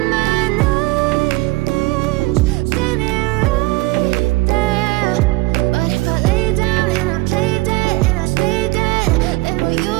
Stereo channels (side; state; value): left; quieter; 21.4 dB